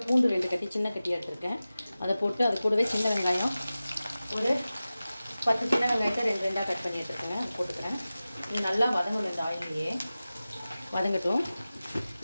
பூண்டு 2 கட்டி சின்ன கட்டியாக எடுத்துருக்கேன். அதை போட்டு அது கூடவே சின்ன வெங்காயம் ஒரு 10 சின்ன வெங்காயத்தை 2 கட் பண்ணி எடுத்துருக்கேங்க. அது போட்டுக்கிறேன். இது நல்லா வதங்கணும். இந்த ஆயிலையே வதங்கட்டும்.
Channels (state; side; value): inverted; both; correlation -0.96